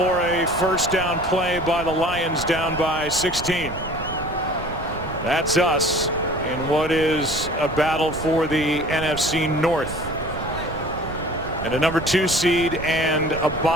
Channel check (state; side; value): noise; right; rumble, 11 dB below the sound